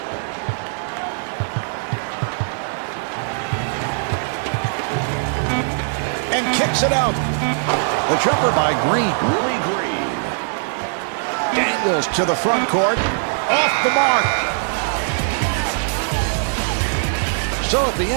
And kicks it out. The jumper by Green. Willie Green. Daniels to the front court. Off the mark. So at the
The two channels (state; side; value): silent; left; digital silence